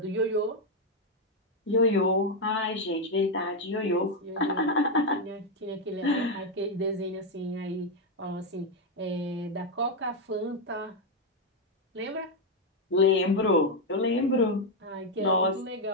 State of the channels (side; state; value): both; normal; correlation 0.03